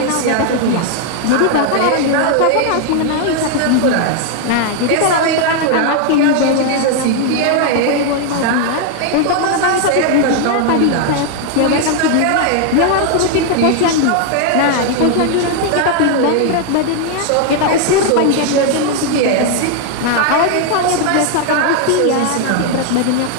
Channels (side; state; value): both; different; correlation 0.00